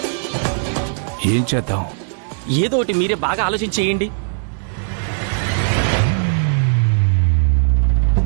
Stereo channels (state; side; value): silent; left; digital silence